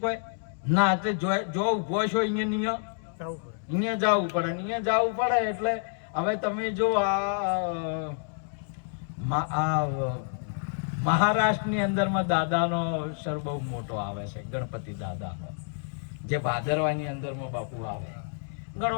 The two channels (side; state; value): right; silent; digital silence